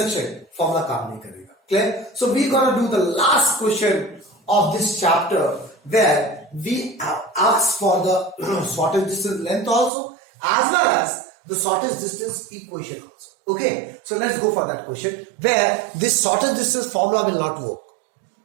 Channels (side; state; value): left; drops out; at 9.9 s